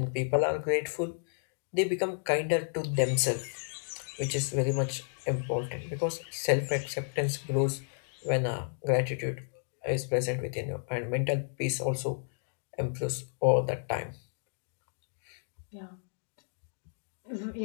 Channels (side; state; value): right; silent; digital silence